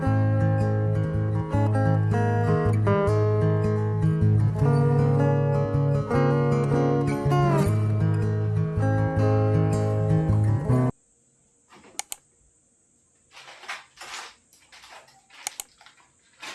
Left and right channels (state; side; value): identical; both; correlation 1.00